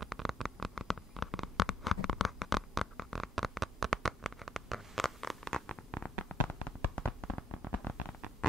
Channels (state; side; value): normal; both; correlation 0.69